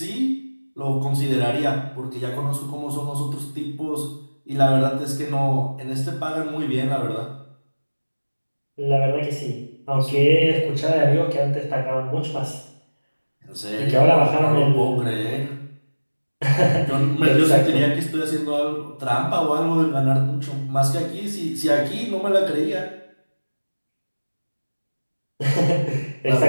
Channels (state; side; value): inverted; both; correlation -1.00